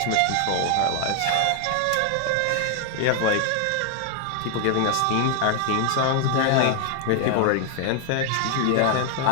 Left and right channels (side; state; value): both; different; correlation 0.00